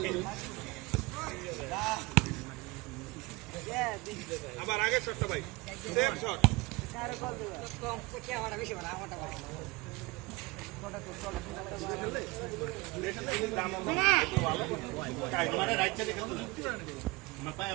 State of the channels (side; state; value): left; quieter; 23.6 dB